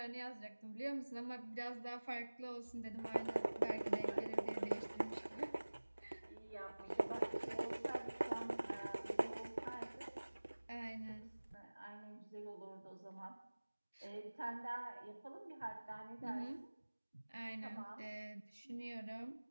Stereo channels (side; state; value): both; inverted; correlation -1.00